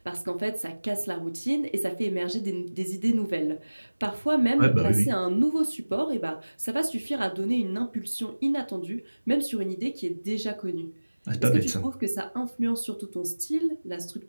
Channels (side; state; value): both; inverted; correlation -1.00